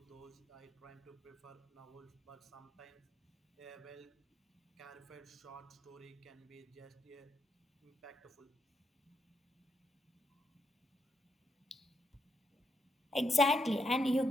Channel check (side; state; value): both; normal; correlation 0.79